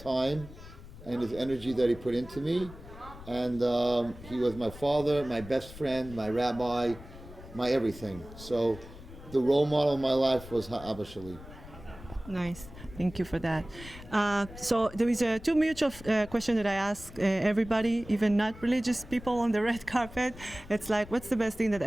and his energy that he put into me. And he was my father, my best friend, my rabbi, my everything. So the role model of my life was Ha'aba Shali. Nice. Thank you for that. So there is two mutual questions that I ask everybody, even not religious people on the red carpet. It's like, what's the best thing that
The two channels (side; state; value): left; noise; rumble, 16 dB below the sound